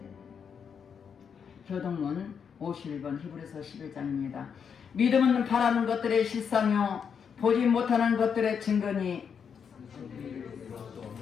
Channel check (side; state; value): right; quieter; 6.9 dB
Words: 교동문 51번 히브리서 11장입니다. 믿음은 바라는 것들의 실상이요 보지 못하는 것들의 증거니